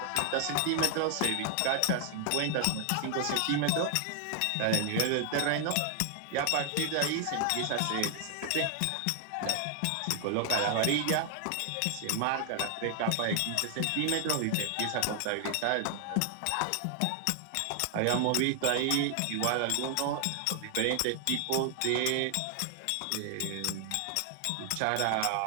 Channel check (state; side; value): different; both; correlation 0.00